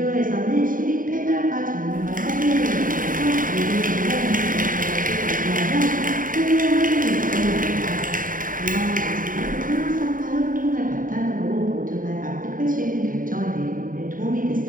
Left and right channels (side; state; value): left; late; 0.39 ms